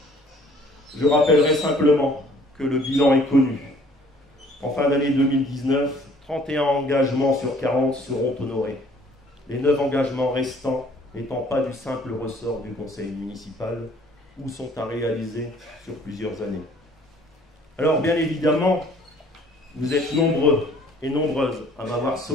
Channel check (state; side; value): normal; both; correlation 0.56